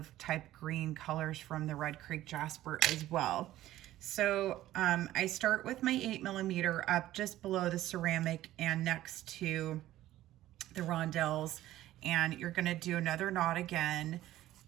type green colors from the red Creek Jasper as well. So I start with my 8mm up just below the ceramic and next to the rondelles, and you're gonna do another knot again,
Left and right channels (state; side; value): quieter; left; 14.5 dB